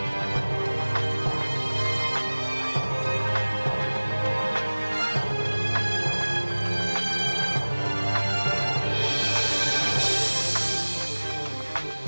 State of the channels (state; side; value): inverted; both; correlation -1.00